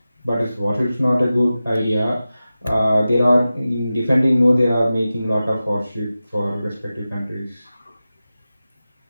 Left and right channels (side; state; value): both; inverted; correlation -0.95